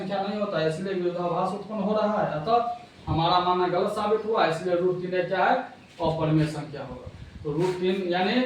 नहीं होता है, इसलिए विरोधाभास उत्पन्न हो रहा है। अतः हमारा मानना गलत साबित हुआ, इसलिए √3 क्या है, अपरिमेय संख्या होगा। तो √3 यानी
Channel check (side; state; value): both; identical; correlation 1.00